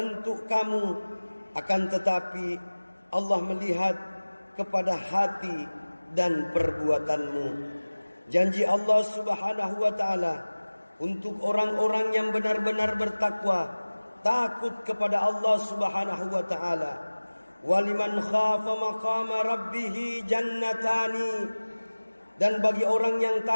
kamu, akan tetapi Allah melihat kepada hati dan perbuatanmu. Janji Allah Subhanahu wa taala untuk orang-orang yang benar-benar bertakwa, takut kepada Allah Subhanahu wa taala. Waliman khafa maqama rabbih jannatani. Dan bagi orang yang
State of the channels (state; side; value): inverted; both; correlation -1.00